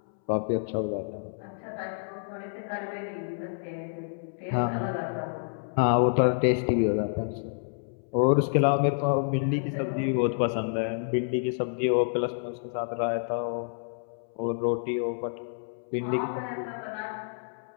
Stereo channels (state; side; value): silent; right; 59 dB below the other